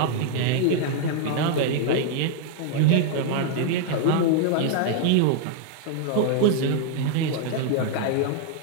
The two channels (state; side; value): different; both; correlation 0.00